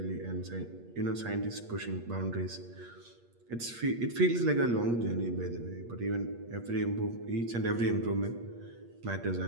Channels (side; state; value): left; late; 8.5 ms